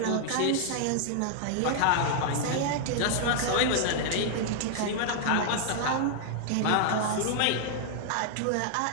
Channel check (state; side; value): different; both; correlation -0.01